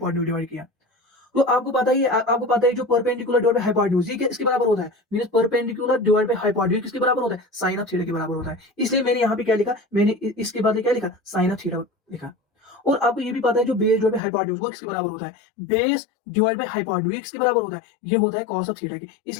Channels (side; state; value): right; drops out; at 14.2 s